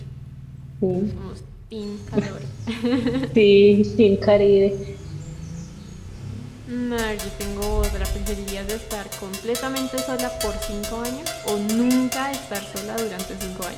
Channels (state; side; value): identical; both; correlation 1.00